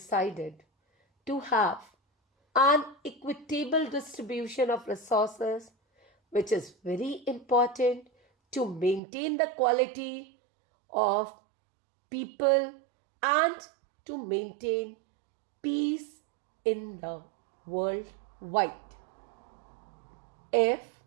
to have an equitable distribution of resources, which is very important to maintain the quality of people and to maintain peace in the world wide. If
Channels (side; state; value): left; drops out; at 9.0 s